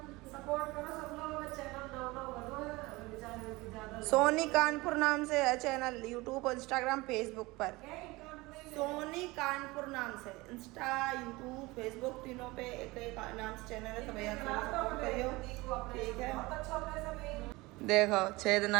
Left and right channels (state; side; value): quieter; left; 22.0 dB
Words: सोनी कानपुर नाम से है चैनल यूट्यूब और इंस्टाग्राम फेसबुक पर सोनी कानपुर नाम से इंस्टा, यूट्यूब, फेसबुक तीनों पे एक नाम से चैनल है, तो भैया सपोर्ट करियो, ठीक है। देखो छेद